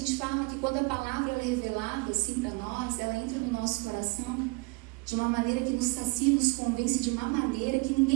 fala que quando a palavra é revelada assim para nós, ela entra no nosso coração de uma maneira que nos sacia, nos convence de uma maneira que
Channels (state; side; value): quieter; left; 28.7 dB